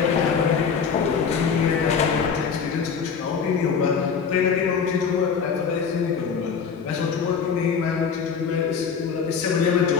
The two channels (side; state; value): right; quieter; 6.3 dB